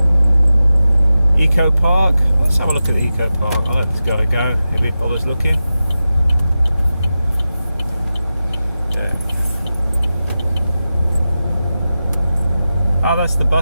Eco Park, let's have a look at the Eco Park. I'll let this guy go if he bothers looking. Oh, that's the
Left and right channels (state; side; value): inverted; both; correlation -0.93